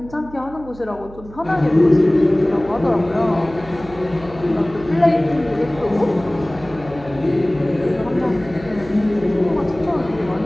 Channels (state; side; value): noise; right; hum, 18 dB below the sound